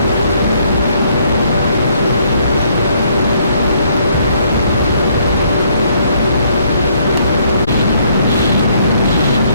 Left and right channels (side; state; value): both; inverted; correlation -0.68